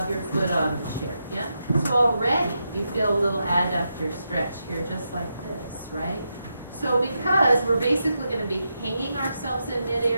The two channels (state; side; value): inverted; both; correlation -0.85